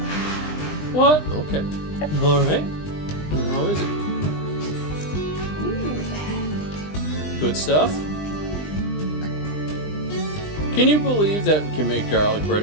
What? Okay. All right. How is it? Good stuff? Can you believe that we can make garlic bread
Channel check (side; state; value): right; late; 20 ms